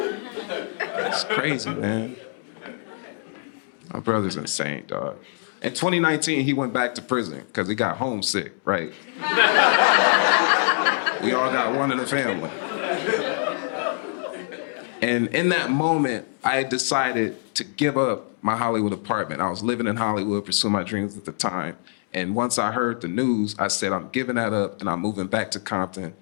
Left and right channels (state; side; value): silent; right; digital silence